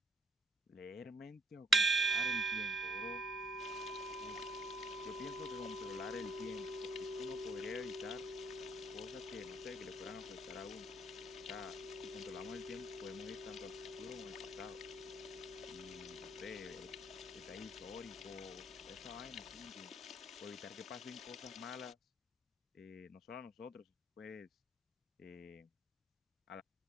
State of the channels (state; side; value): normal; both; correlation 0.70